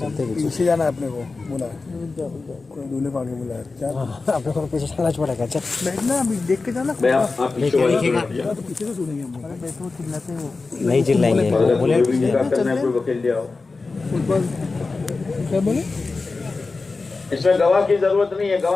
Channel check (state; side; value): quieter; right; 3.9 dB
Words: پیچھے جانا ہے اپنے کو، بولا کوئی دولہے کو آگے بولا ہے. اپنے کو پیچھے چلنا پڑے گا. بیٹھنا ابھی دیکھ کے جانا. آپ پیچھے والے کو بیٹھ جاؤ. پیچھے سے سنیں گے ہم. بیٹھو چلاتے ہیں وہ نہیں چلائیں گے. اگر کوئی نکاح کرنا ہے کوئی وکیل لے آؤ. کیا بولے؟ اس میں گواہ کی ضرورت نہیں ہے،